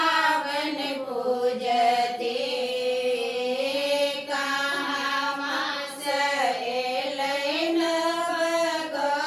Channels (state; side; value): identical; both; correlation 1.00